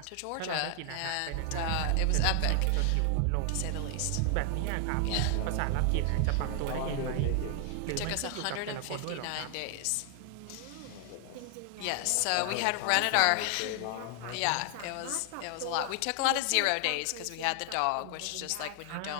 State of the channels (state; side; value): different; both; correlation 0.00